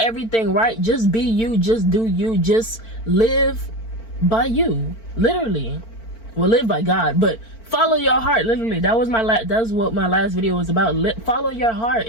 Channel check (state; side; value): late; right; 4.4 ms